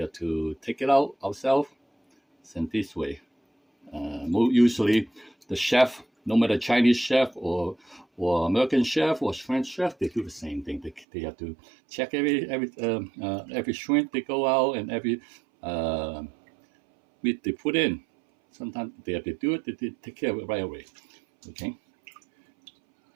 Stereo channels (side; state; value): left; drops out; at 11.1 s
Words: to take it out ourselves. And this way, usually the chef, no matter Chinese chef or American chef or French chef, they do the same thing. They have to check every shrimp they go out and every meat they put in. Sometimes they have to do it. They take care of it right away. Okay.